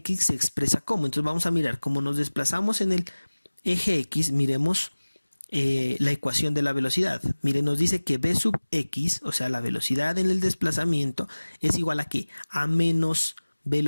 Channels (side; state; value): both; inverted; correlation -1.00